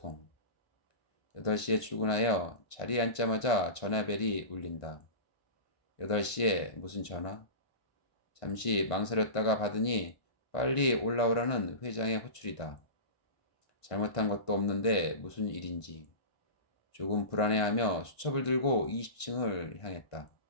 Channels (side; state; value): right; late; 1.5 ms